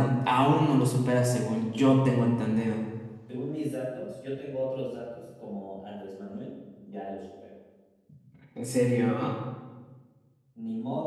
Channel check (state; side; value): identical; both; correlation 1.00